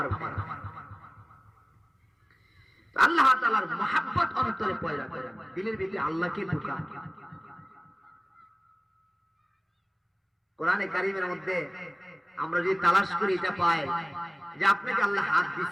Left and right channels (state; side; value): identical; both; correlation 1.00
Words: ভাই, আল্লাহ তাআলার মহব্বত অন্তরে পয়দা করে, দিলের ভিতরে আল্লাহকে ঢুকা। কোরআনে কারীমের মধ্যে আমরা যদি তালাশ করি এটা পাই যে আপনাকে আল্লাহ হাত